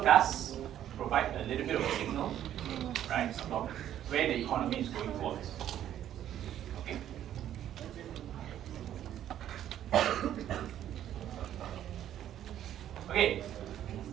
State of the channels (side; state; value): left; quieter; 11.2 dB